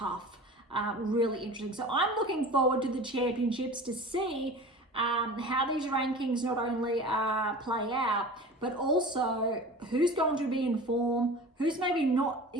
Really interesting. So I'm looking forward to the championships to see how these rankings not only play out, but also who's going to be in form, who's maybe not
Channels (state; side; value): normal; both; correlation 0.37